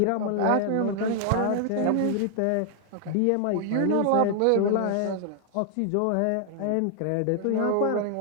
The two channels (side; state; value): both; different; correlation 0.00